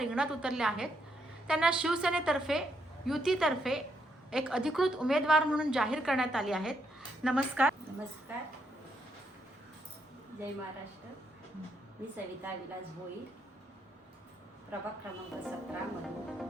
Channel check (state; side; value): normal; both; correlation 0.77